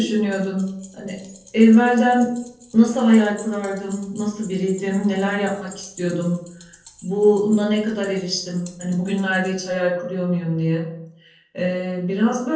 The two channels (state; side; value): identical; both; correlation 1.00